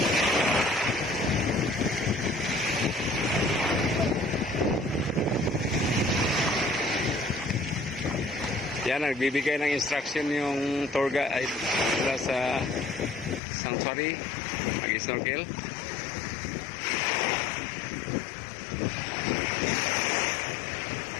Yan, nagbibigay ng instruction yung tour guide mula sa sanctuary, mag-snorkel.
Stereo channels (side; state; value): right; drops out; at 13.4 s